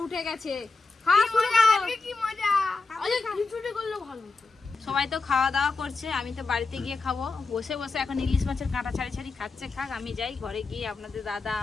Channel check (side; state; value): right; quieter; 4.0 dB